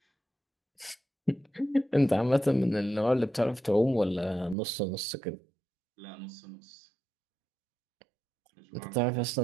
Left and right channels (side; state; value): left; drops out; at 4.5 s